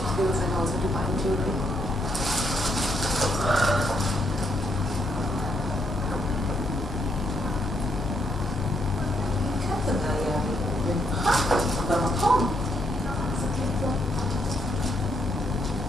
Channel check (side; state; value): both; normal; correlation 0.75